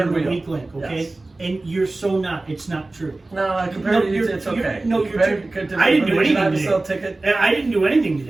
being the wheel. weak link. Okay, Yes. and you're so not. It's not true. No, compared to you, it's okay. No, you're Compared true. to I didn't do Should I anything have a today. sell ticket? And I didn't do anything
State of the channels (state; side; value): quieter; left; 3.1 dB